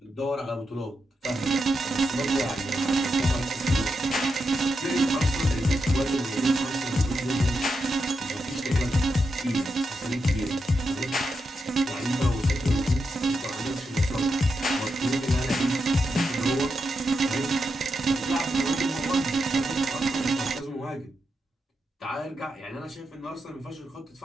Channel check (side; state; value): both; normal; correlation 0.86